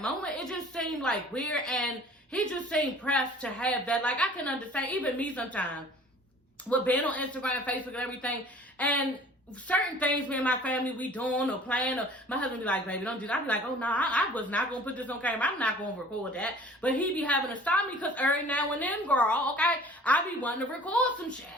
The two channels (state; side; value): normal; both; correlation 0.48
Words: It just seemed like weird, and he just seemed pressed to have that. Like, I can understand, even me sometimes, with being on Instagram, Facebook, and everything, and certain things me and my family we doing or playing, or my husband be like, baby, don't do that. I be like, oh no, I was not gonna put this on camera. I'm not gonna record that. But he be having to stop me because every now and then, girl, okay, I be wanting to record some shit.